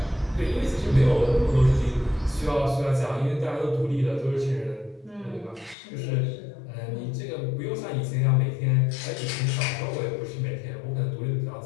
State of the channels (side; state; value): right; drops out; at 5.8 s